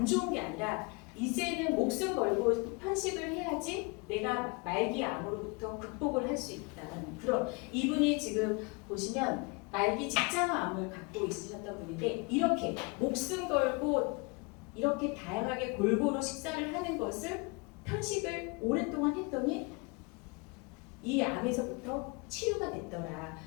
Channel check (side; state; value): right; quieter; 29.3 dB